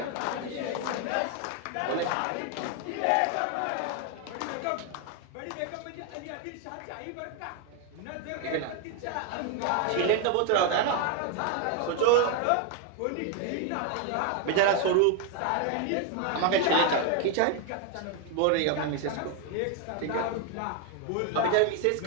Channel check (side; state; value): both; different; correlation 0.01